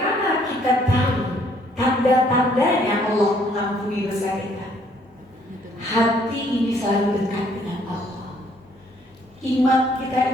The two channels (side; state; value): both; normal; correlation 0.64